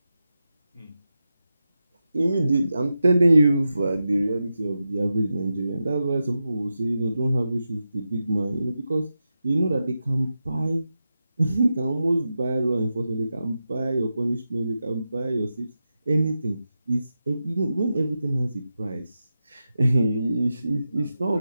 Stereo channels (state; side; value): inverted; both; correlation -0.90